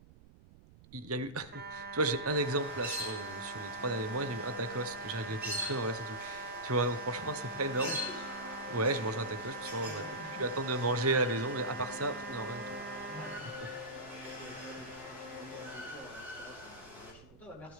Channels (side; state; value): right; noise; rumble, 23 dB below the sound